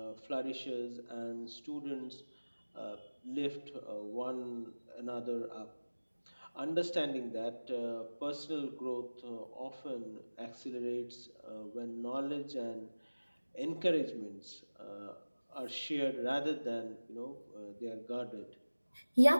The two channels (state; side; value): inverted; both; correlation -1.00